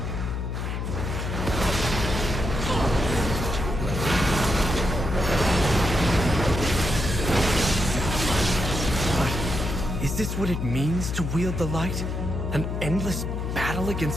But is this what it means to wield the light? An endless battle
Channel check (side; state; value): left; noise; hum, 3 dB below the sound